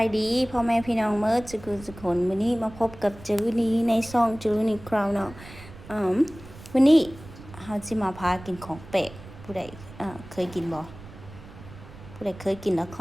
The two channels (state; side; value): noise; right; rumble, 17 dB below the sound